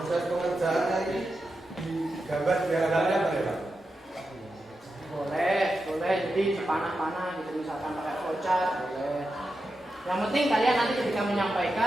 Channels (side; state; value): both; normal; correlation 0.89